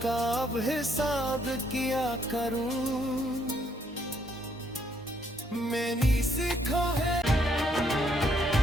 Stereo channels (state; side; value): normal; both; correlation 0.71